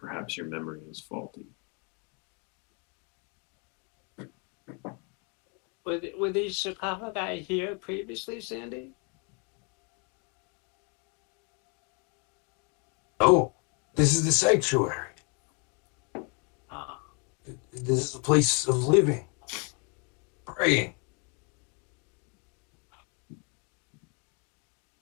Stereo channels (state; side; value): quieter; right; 35.0 dB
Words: your memory is faulty. Were these sarcophagi here previously, Sandy? Oh, this is the sanctuary. Ah. This is a place of living, praying.